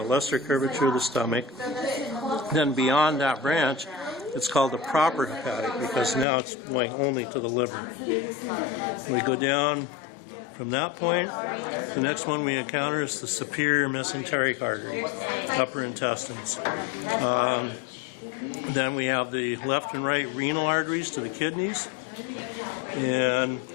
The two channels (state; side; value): drops out; right; at 6.2 s